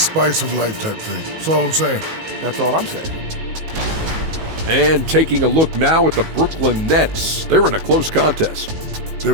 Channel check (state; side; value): late; left; 19 ms